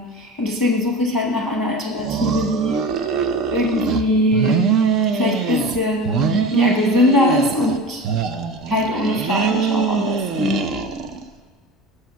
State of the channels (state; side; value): normal; both; correlation 0.32